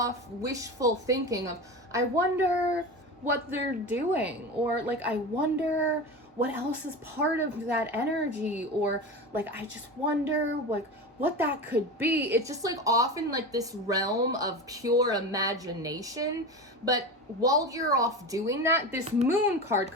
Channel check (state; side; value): normal; both; correlation 0.26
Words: wishful thinking of, I wonder what they're doing, or like, I wonder what else is part of that energy, or like, I just wonder what that could be. It's just like often like this realm of pure imagination. But while you're off doing that, this Moon card